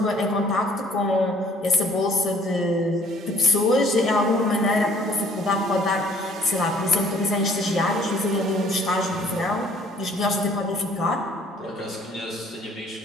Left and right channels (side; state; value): both; normal; correlation 0.58